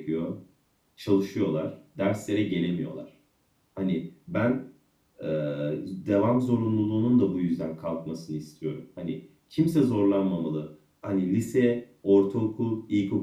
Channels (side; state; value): both; identical; correlation 1.00